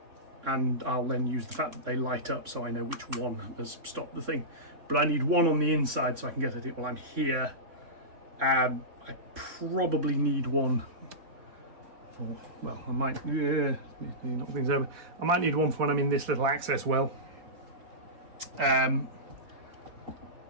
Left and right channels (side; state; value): left; late; 3.6 ms